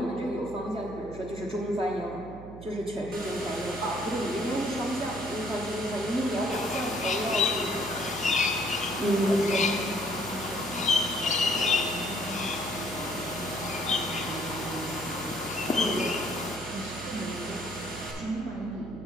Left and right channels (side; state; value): right; noise; hum, 13 dB below the sound